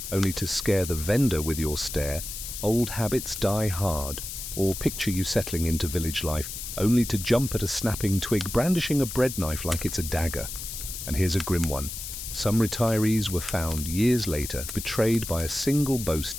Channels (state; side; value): noise; left; hiss, 8 dB below the sound